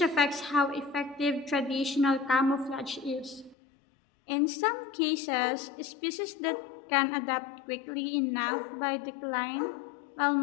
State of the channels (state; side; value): drops out; right; at 3.6 s